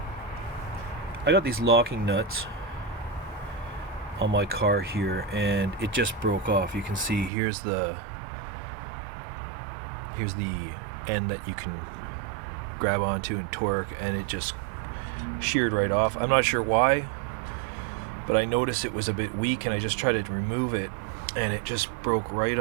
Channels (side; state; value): left; drops out; at 7.3 s